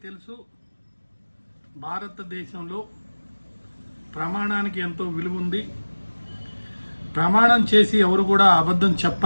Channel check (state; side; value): inverted; both; correlation -1.00